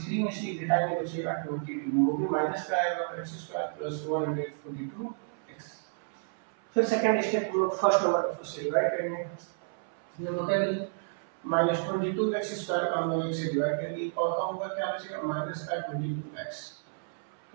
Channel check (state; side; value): silent; left; 57 dB below the other